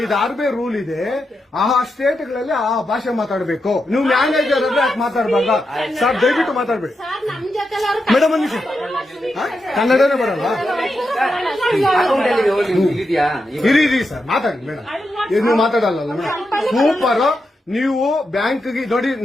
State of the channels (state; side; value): normal; both; correlation 0.86